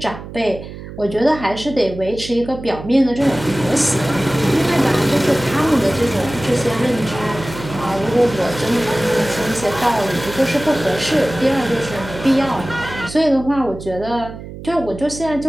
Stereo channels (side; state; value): right; noise; hum, 12 dB below the sound